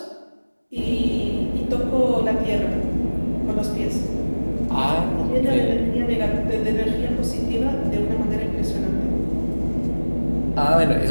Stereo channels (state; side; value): inverted; both; correlation -1.00